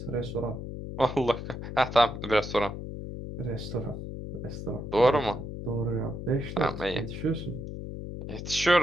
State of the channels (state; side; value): noise; left; hum, 8 dB below the sound